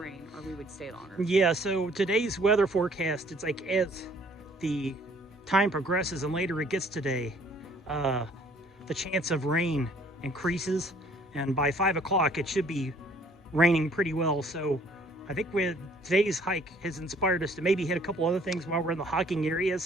or we would stay longer. Yeah, so today's weather forecast, it's like as the time progresses and later it gets today, the chance of rain increases, and by 5 o'clock it should be raining pretty well. So I think today's hike has inspired us to maybe hit a couple other things while we're in the hiking area.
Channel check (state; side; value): normal; both; correlation 0.59